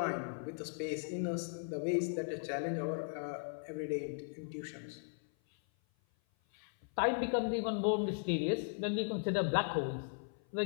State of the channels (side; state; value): right; silent; 53 dB below the other